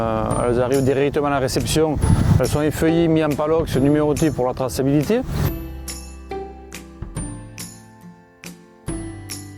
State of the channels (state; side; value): identical; both; correlation 1.00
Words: arrivent directement à la réception. Elles sont effeuillées, mises en palox, numérotées pour la traçabilité.